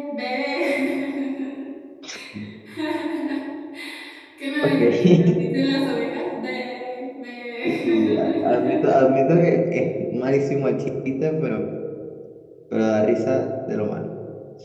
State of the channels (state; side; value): identical; both; correlation 1.00